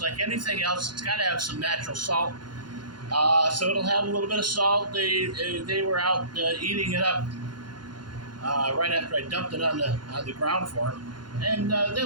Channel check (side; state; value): left; late; 0.71 ms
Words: like anything else. It's got to have some natural salt. So it'll have a little bit of salt. They were out eating it up right after I dumped it on the ground for them, and they